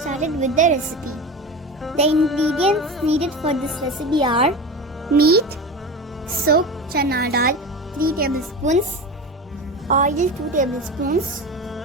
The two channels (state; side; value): normal; both; correlation 0.28